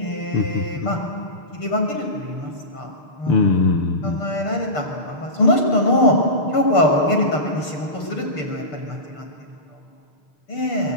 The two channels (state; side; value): late; right; 6.7 ms